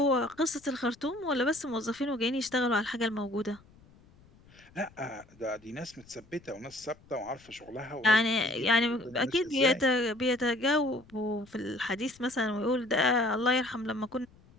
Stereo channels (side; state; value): left; noise; rumble, 27 dB below the sound